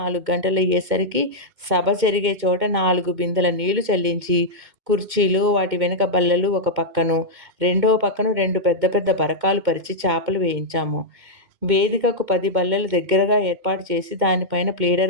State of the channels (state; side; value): late; left; 2.2 ms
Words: గంటలయ్యేసరికి సభ జరిగే చోట 4 బిందెల నీళ్లు చల్లించి, కుర్చీలు, వాటి వెనుక బల్లలు ఒక పక్కను, రెండో పక్కను 2 పెద్ద పెద్ద బరకాలు పరిచి చాపలు వేయించాము. వేదికకు 10 బల్లలు దగ్గరగా ఏర్పాటు చేసి దానిపైన